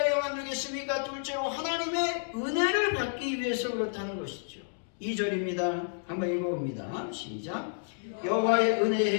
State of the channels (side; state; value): right; silent; digital silence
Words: 되겠습니까? 둘째로 하나님의 은혜를 받기 위해서 그렇다는 것이죠. 2절입니다. 한번 읽어봅니다. 시작. 여호와의